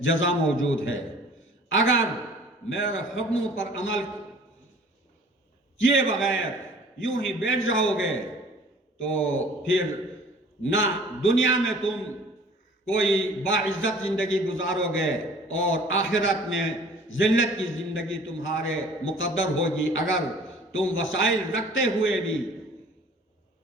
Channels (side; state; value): both; normal; correlation 0.50